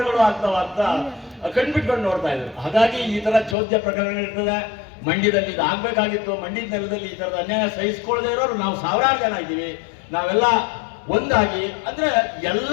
ಆಗ್ತಾವ ಅಂತ ಕಣ್ಬಿಟ್ಕೊಂಡು ನೋಡ್ತಾ ಇದ್ರು. ಹಾಗಾಗಿ ಈ ತರ ಚೋದ್ಯ ಪ್ರಕರಣಗಳಿರ್ತದೆ. ಮಂಡ್ಯದಲ್ಲಿ ಇದು ಆಗ್ಬೇಕಾಗಿತ್ತು. ಮಂಡ್ಯದ ನೆಲದಲ್ಲಿ ಈ ತರದ ಅನ್ಯಾಯ ಸಹಿಸ್ಕೊಳ್ಳದೆ ಇರೋರು ನಾವು 1000 ಜನ ಇದ್ದೀವಿ. ನಾವೆಲ್ಲ ಒಂದಾಗಿ ಅಂದ್ರೆ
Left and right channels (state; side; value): drops out; right; at 3.6 s